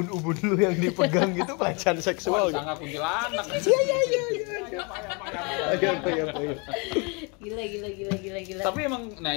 lu yang dipegang gitu pelecehan seksual gitu. Sangat kuntilanak. Iya. Gila. Tapi emang,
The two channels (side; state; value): right; quieter; 31.7 dB